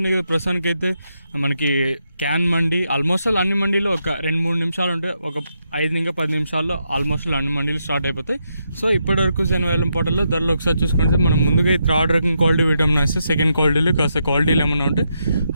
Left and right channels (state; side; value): inverted; both; correlation -0.81